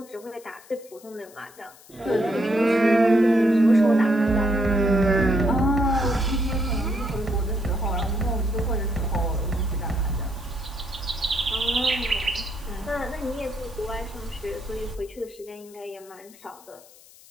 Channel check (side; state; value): left; noise; hiss, 23 dB below the sound